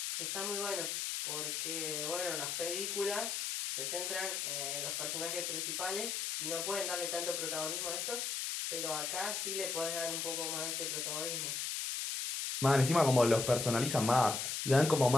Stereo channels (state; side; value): noise; left; hiss, 2 dB below the sound